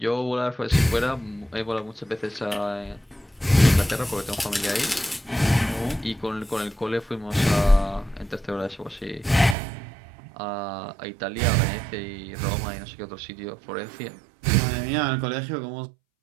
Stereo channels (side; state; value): left; drops out; at 9.6 s